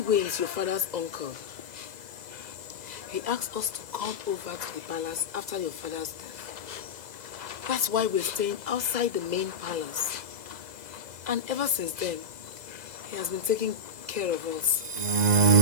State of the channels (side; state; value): left; late; 2.0 ms